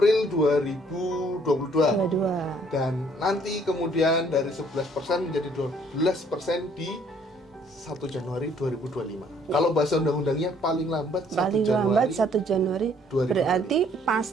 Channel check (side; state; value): both; normal; correlation 0.62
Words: 2022. Dan nanti kemudian dari 11% menjadi 12% di 1 Januari 2025. Kalau bahasa undang-undangnya paling lambat 1 Januari 2025. Berarti